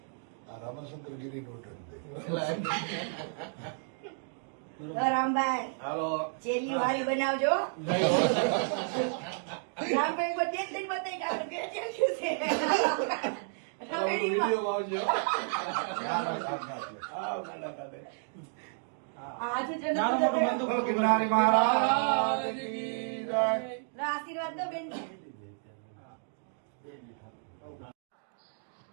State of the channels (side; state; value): left; silent; digital silence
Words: રામાશંકર ગીરી રામભાઈ ચેલી વાળી બનાવજો રામભાઈ પર ટેન્શન બતાવી કાઢું બે ટેન્શન છે આશીર્વાદ દો બેન